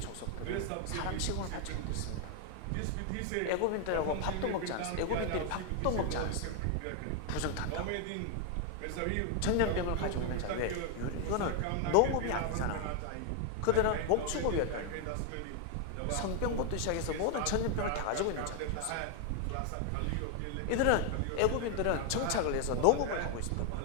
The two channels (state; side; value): different; both; correlation 0.00